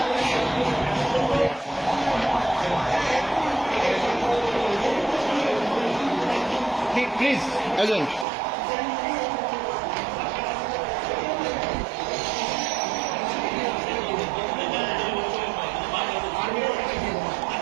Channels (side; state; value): left; drops out; at 8.2 s